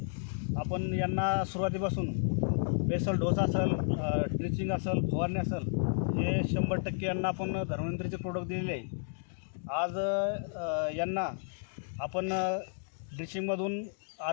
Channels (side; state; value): right; silent; digital silence